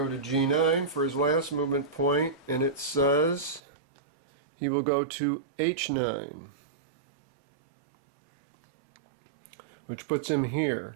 to G9 for his last movement point, and it says he will go to H9, which puts him here.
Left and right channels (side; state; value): left; drops out; at 3.6 s